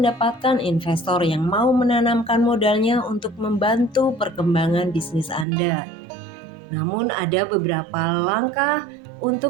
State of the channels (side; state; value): left; drops out; at 5.5 s